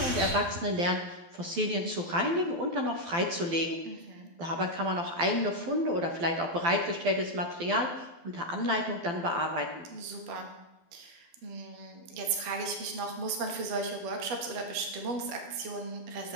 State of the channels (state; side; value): late; left; 12 ms